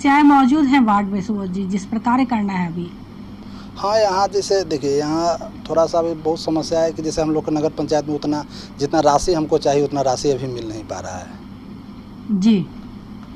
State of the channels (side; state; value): both; identical; correlation 1.00